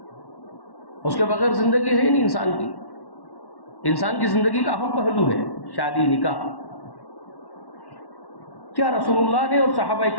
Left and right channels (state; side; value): late; right; 1.1 ms